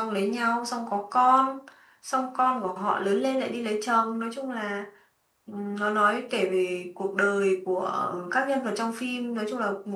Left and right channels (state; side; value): identical; both; correlation 1.00